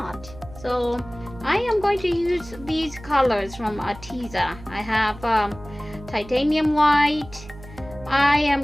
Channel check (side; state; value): right; noise; hum, 17 dB below the sound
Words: So I am going to use these colors from Artist. I have titanium white. I am